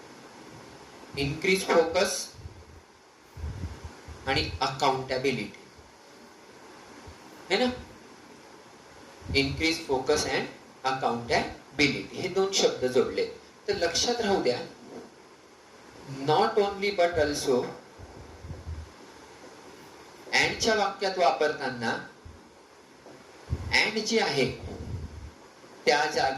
इन्क्रीज फोकस आणि अकाउंटेबिलिटी है ना. इन्क्रीज फोकस अँड अकाउंटेबिलिटी हे दोन शब्द जोडले. तर लक्षात राहू द्या, नॉट ओनली बट ऑल्सो अँडच्या वाक्यात वापरताना अँड जे आहे त्या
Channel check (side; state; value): both; identical; correlation 1.00